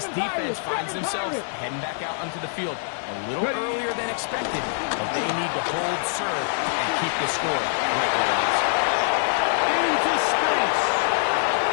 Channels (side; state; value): right; silent; digital silence